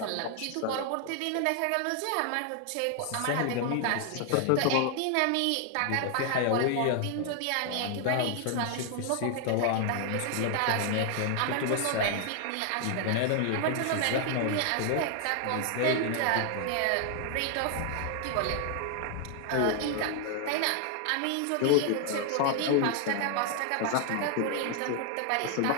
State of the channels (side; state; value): both; different; correlation 0.00